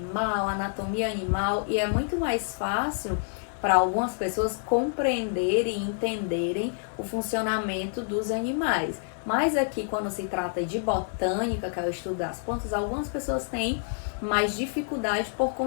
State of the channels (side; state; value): right; silent; digital silence